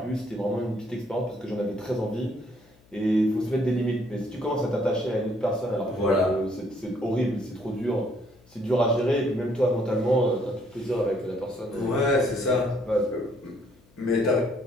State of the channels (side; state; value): left; noise; hum, 30 dB below the sound